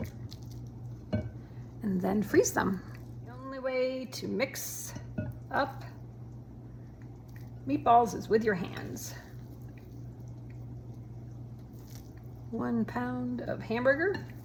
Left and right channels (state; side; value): identical; both; correlation 1.00